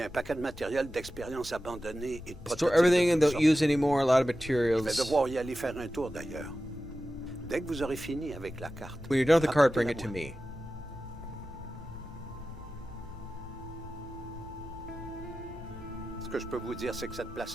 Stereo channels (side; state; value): left; noise; rumble, 16 dB below the sound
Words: a un paquet de matériel d'expérience abandonné et de Store prototypes everything de and toutes don't sortes. use anymore. A lot of Je vais materials. devoir y aller faire un tour d'ailleurs. Dès que vous aurez fini avec la carte. When you're done with the card, bring it to apportez-la-moi. me. Ce que je peux vous dire, c'est que cette